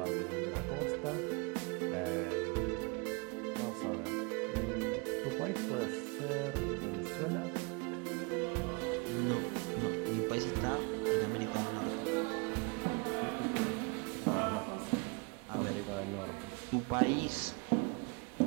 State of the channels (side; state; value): left; quieter; 31.5 dB